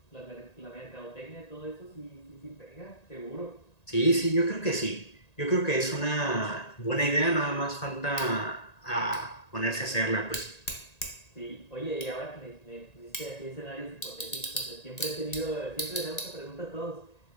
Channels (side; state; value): right; late; 1.9 ms